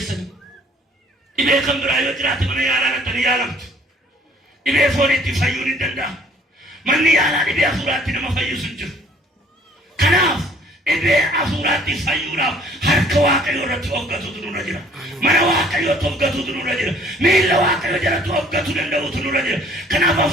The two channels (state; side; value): normal; both; correlation 0.57